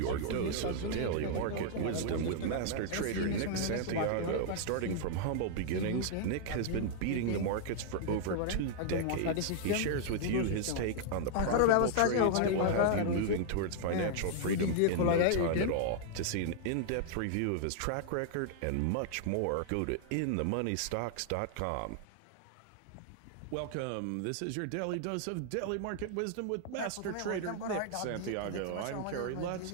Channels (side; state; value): both; different; correlation -0.01